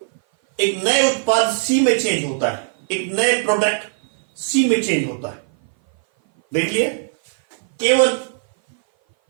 एक नए उत्पाद सी में चेंज होता है, एक नए प्रोडक्ट सी में चेंज होता है। देख लिए, केवल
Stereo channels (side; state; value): left; silent; 58 dB below the other